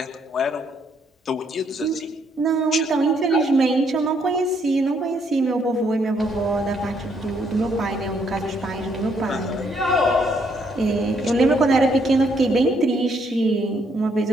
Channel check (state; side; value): normal; both; correlation 0.71